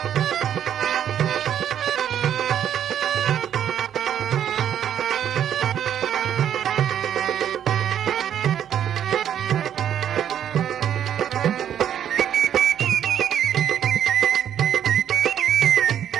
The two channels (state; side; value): quieter; left; 9.8 dB